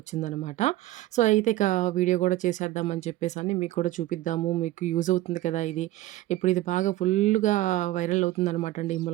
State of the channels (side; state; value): left; quieter; 15.8 dB